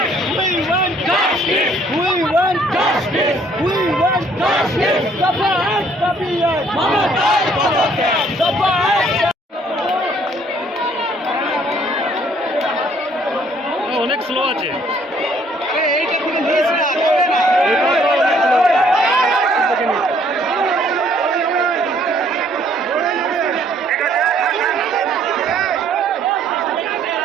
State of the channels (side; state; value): both; normal; correlation 0.62